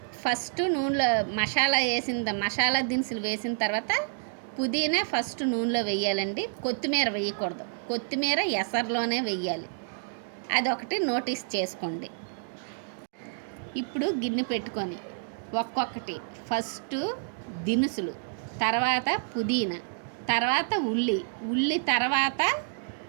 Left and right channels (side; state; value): left; silent; digital silence